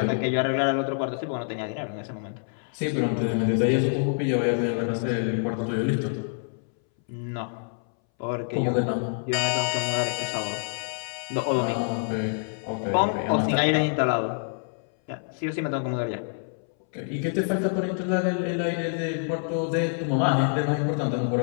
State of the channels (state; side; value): silent; right; 60 dB below the other